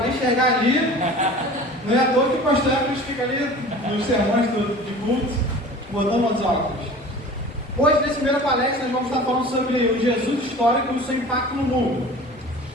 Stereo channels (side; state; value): both; normal; correlation 0.41